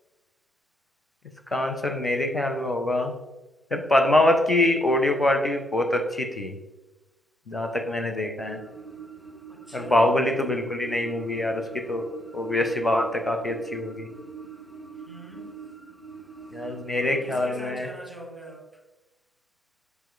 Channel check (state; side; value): normal; both; correlation 0.74